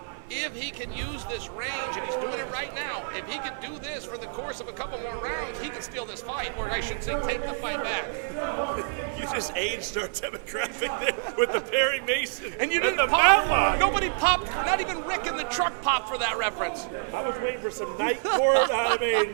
if he can use this range, and he's doing it right now, if he can do this for the course of a couple more rounds, he can steal this fight, or I should say take the fight back. You just aged our demographic there with the Perry Mason and you didn't the pop. Matlock. Nobody popped, not even Rick in the truck popped for that reference. I was waiting for some night court. I mean,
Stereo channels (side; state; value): left; silent; 56 dB below the other